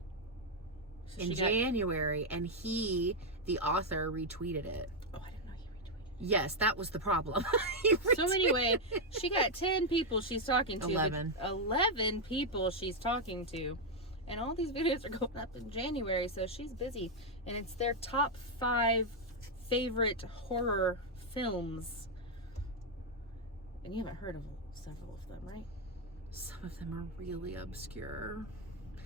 in January? And the author, retweeted it. Oh, I didn't know he retweeted. Yes, that was the problem. So anyway, she got 10 people she's talking to. 11 people she's talking to. And all these videos are going up in January, so she's busy. And it's their top 5 favorite horror films. And you haven't heard of several of them, right? Some of them are really obscure.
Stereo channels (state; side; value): normal; both; correlation 0.00